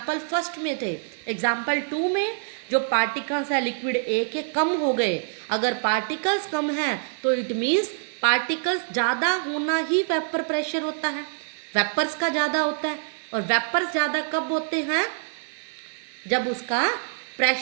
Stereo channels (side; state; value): left; silent; 61 dB below the other